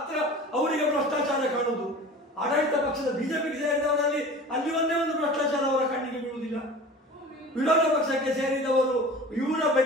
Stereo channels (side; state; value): both; normal; correlation 0.39